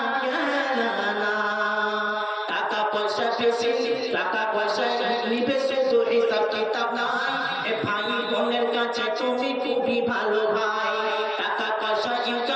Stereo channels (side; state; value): both; identical; correlation 1.00